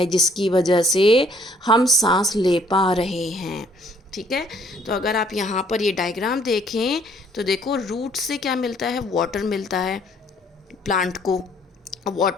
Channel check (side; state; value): both; normal; correlation 0.62